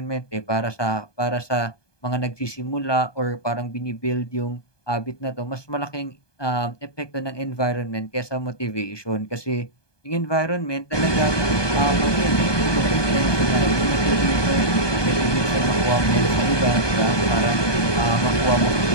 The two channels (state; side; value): late; right; 1.2 ms